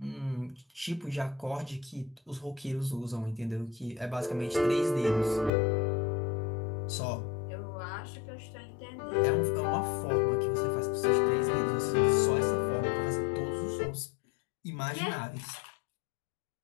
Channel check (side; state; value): right; drops out; at 5.5 s